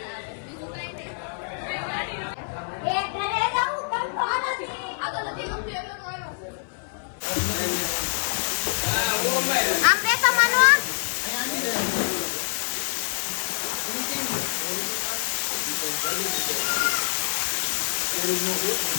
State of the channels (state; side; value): silent; right; 56 dB below the other